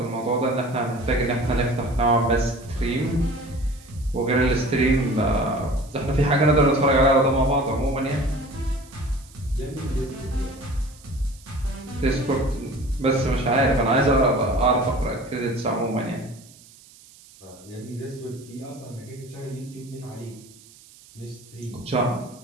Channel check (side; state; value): right; noise; hiss, 24 dB below the sound